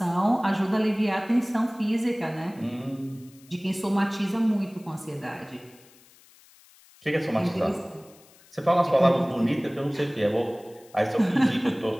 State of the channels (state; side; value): noise; left; hiss, 27 dB below the sound